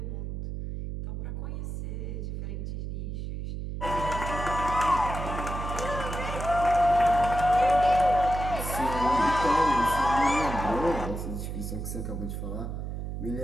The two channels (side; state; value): right; noise; hum, 5 dB below the sound